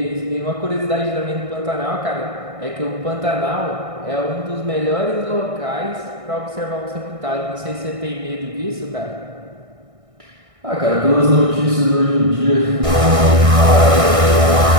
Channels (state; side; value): late; left; 1.6 ms